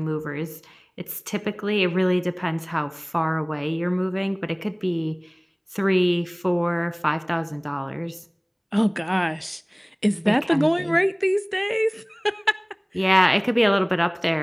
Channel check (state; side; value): identical; both; correlation 1.00